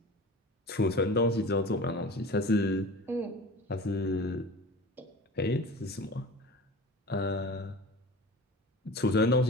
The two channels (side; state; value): both; normal; correlation 0.37